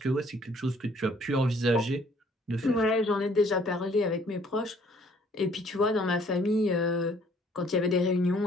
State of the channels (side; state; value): both; normal; correlation 0.60